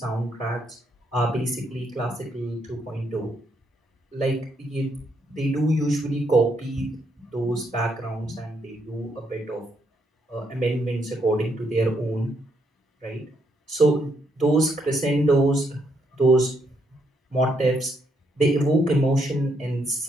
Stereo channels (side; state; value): both; normal; correlation 0.75